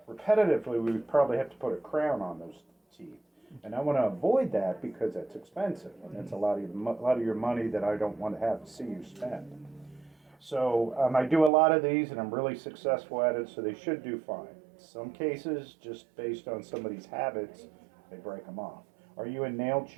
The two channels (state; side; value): drops out; left; at 11.5 s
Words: repetitively, we would probably have to put a crown on those teeth. And I want to avoid that because that's expensive, and that's a lot of your money that I don't want to have to see you spend. So I do a lot of these, and I'm really successful at it, so they should do fine. Some cases, just based on somebody's habits, they break them off. Are you a nail